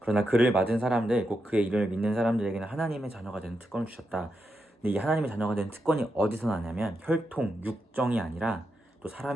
그를 맞은 사람들, 곧 그의 이름을 믿는 사람들에게는 하나님의 자녀가 되는 특권을 주셨다. 근데 이 하나님의 자녀가 되는 특권이 어디서 나냐면 혈통, 육정이 아니라, 또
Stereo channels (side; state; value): both; normal; correlation 0.85